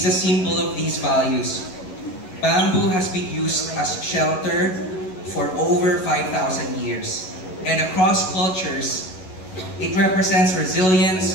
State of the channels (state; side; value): late; right; 11 ms